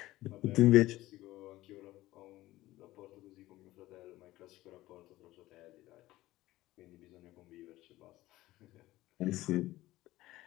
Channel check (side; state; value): right; quieter; 16.8 dB